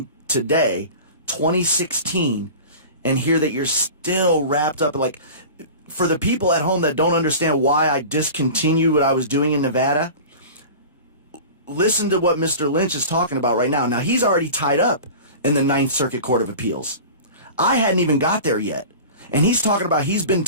today, 2016, and hear that you're still wrapped up, for the people at home that don't understand why I discontinued what I was doing in Nevada, listen to what Mr. Lynch is talking about right now. Now, he's already tied up in the Ninth Circuit Court of Appeals. I hadn't even got there yet. And he's talking about he's been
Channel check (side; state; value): both; inverted; correlation -0.36